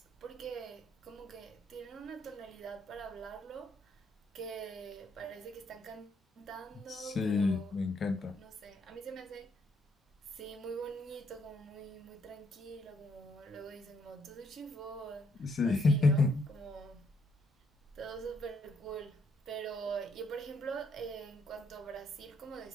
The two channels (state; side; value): normal; both; correlation 0.72